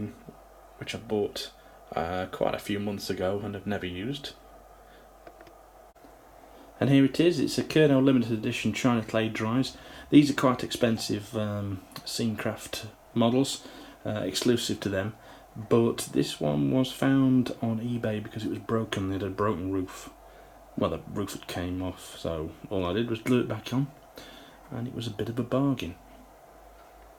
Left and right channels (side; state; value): both; identical; correlation 1.00